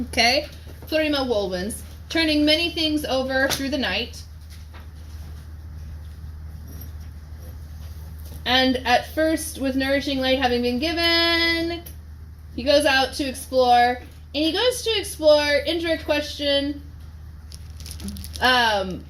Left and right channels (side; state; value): both; identical; correlation 1.00